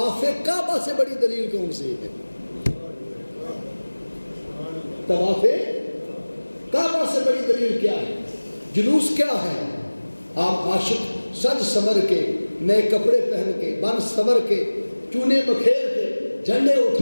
کعبہ سے بڑی دلیل کون سی ہے؟ طواف کعبہ سے بڑی دلیل کیا ہے؟ جلوس کیا ہے؟ آپ عاشق سج سمر کے، نئے کپڑے پہن کے، بن سمر کے، چونے بکھیر کے، جھنڈے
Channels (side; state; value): both; inverted; correlation -1.00